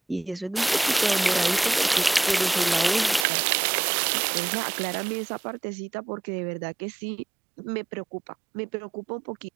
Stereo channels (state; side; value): drops out; left; at 3.2 s